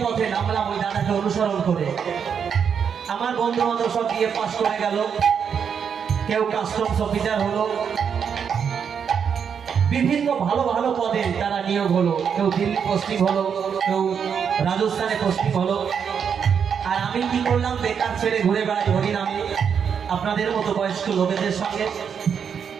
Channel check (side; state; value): left; quieter; 7.2 dB